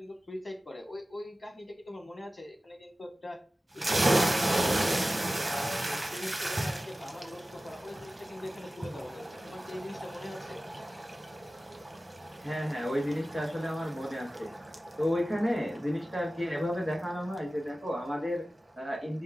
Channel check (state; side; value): normal; both; correlation 0.96